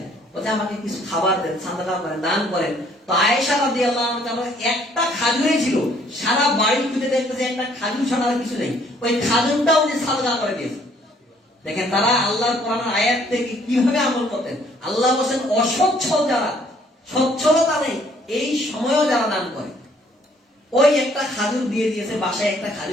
বলছে আমাকে কিছু খাবার দেন, সাদাকা করেন, দান করেন। তো আয়েশা রাদিয়াল্লাহু আনহা একটা খাজুরই ছিল, সারা বাড়ি খুঁজে দেখতেছে একটা খাজুর ছাড়া আর কিছু নেই, ওই খাজুরটাও উনি সাদাকা করে দিয়েছে। দেখেন তারা আল্লাহর কোরআনের আয়াত থেকে কিভাবে আমল করতেন। আল্লাহ বলেন অসচ্ছল যারা, সচ্ছলতা নেই, এই সময়ও যারা দান করে, ওই একটা খাজুর দিয়ে দিয়েছে, বাসায় একটা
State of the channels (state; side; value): normal; both; correlation 0.62